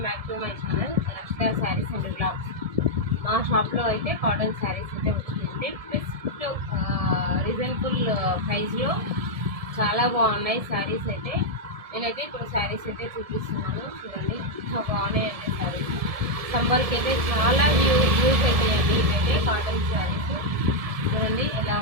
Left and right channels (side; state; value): left; late; 1.7 ms